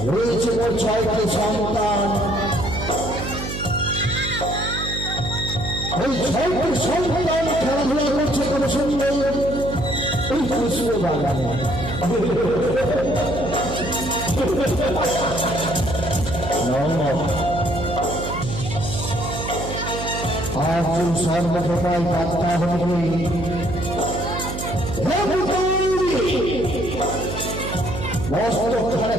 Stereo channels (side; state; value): right; noise; hum, 6 dB below the sound